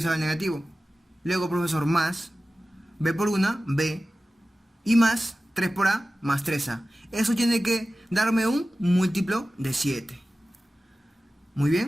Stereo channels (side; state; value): both; normal; correlation 0.95